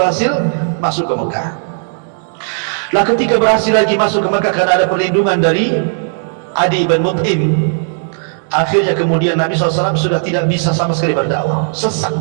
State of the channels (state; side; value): silent; left; 70 dB below the other